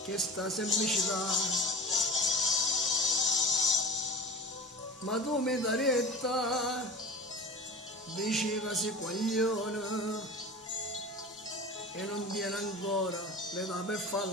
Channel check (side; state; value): both; normal; correlation 0.36